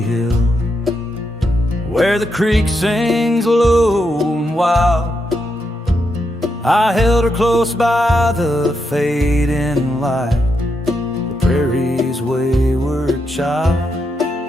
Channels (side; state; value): both; normal; correlation 0.83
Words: Hill, where the creek sings low and wild. I held her close by the fading light, the prairie's wayward child.